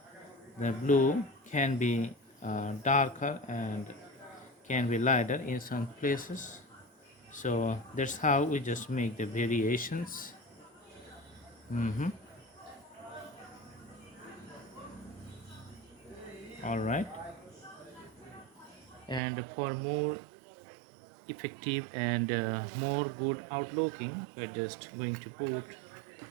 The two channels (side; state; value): left; drops out; at 19.2 s